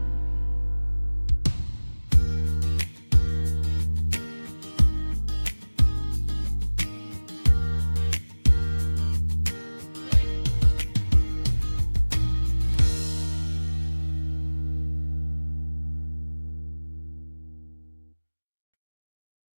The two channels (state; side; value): inverted; both; correlation -1.00